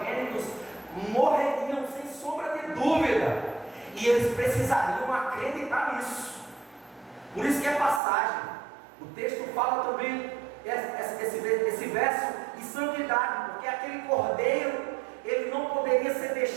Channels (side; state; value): left; drops out; at 8.0 s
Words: morreriam sem sombra de dúvida, e eles precisariam acreditar nisso. Por isso que é passagem. O texto fala também esse verso de santidade, porque aquele cordeiro, ele não poderia ser